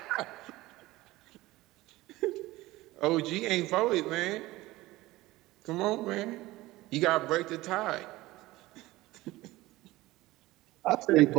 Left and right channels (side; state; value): left; quieter; 18.5 dB